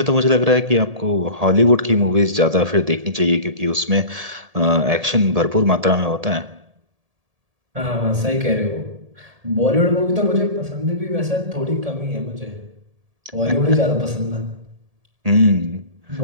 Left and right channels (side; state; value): left; late; 1.7 ms